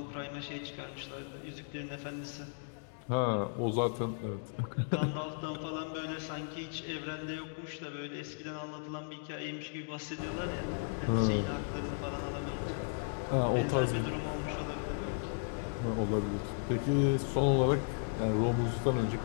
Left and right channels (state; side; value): silent; right; digital silence